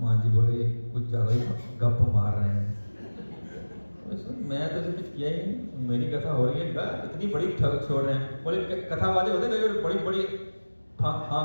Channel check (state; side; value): inverted; both; correlation -1.00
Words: जी बोले कुछ ज्यादा ही गप मार रहे हैं। मैं तो ऐसे कुछ किया ही नहीं, मेरी कथा हो रही है, इतनी बड़ी ठग छोड़ रहे हैं। बोले कथा वाले होते हैं बड़ी बड़ी